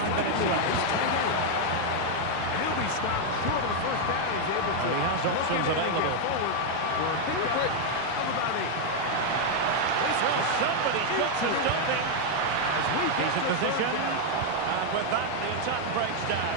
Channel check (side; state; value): both; different; correlation 0.00